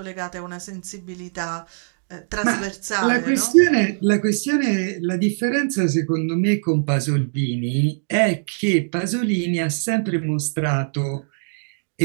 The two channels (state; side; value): silent; left; digital silence